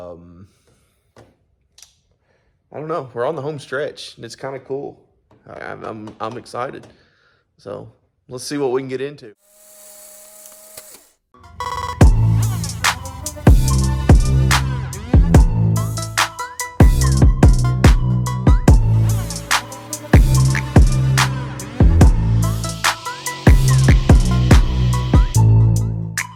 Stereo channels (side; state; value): both; identical; correlation 1.00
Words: don't know. We're on the home stretch, and it's kind of cool. I'm excited. So let's see what we can get into.